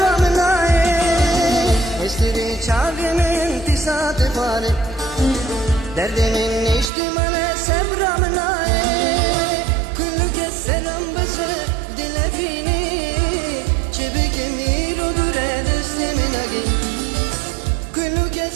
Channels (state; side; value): drops out; left; at 6.9 s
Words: aye. Estiri çavimin tisatı bari derdimin içtimale sevramın aye. Kulluke selam bası dilefini çibikim irodur edesimin agi. Kulluke